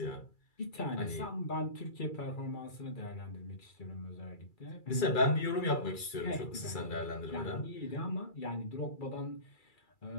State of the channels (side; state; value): right; late; 2.3 ms